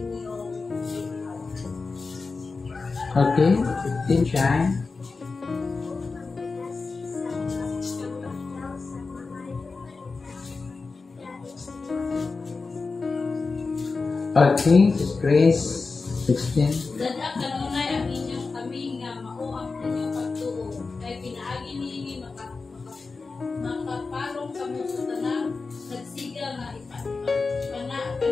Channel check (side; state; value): right; quieter; 4.2 dB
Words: Okay, 15 Shine. Okay, Sis Grace, 16. Dada kanunay ang inyong kami nga mao ang inyong pagtuo. Kay pinaagi niini makapalong kamo sa tanang nagsiga nga ipana